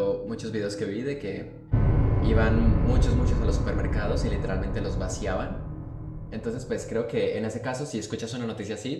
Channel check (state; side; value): identical; both; correlation 1.00